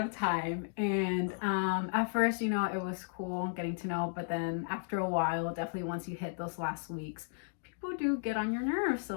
time. And at first, it was cool getting to know, but then after a while, definitely once you hit those last weeks, people do get on your nerves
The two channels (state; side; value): silent; right; digital silence